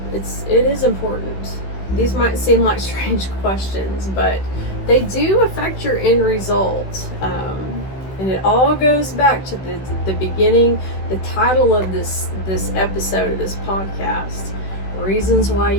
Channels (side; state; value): right; late; 16 ms